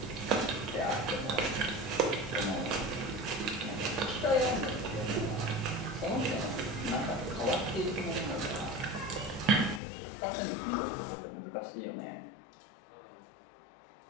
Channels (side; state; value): right; drops out; at 9.8 s